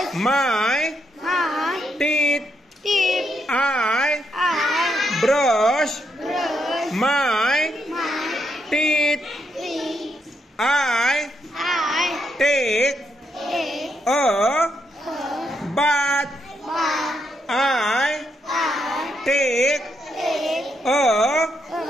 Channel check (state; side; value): normal; both; correlation 0.79